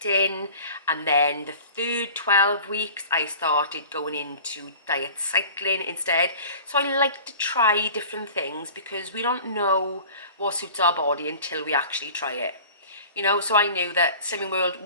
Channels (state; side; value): inverted; both; correlation -0.42